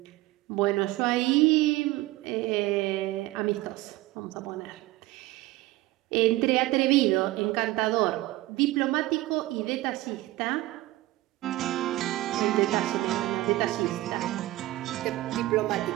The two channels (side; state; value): left; quieter; 18.0 dB